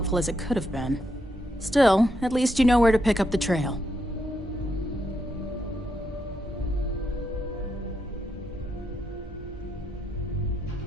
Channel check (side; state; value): both; normal; correlation 0.80